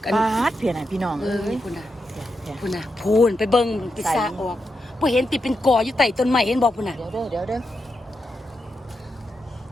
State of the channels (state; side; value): normal; both; correlation 0.86